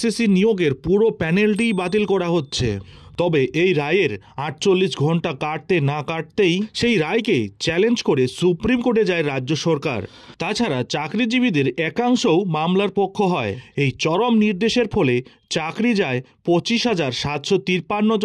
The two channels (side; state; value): both; identical; correlation 1.00